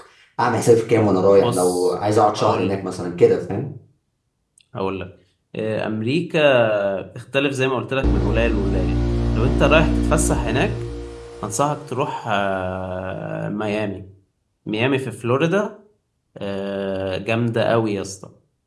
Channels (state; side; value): identical; both; correlation 1.00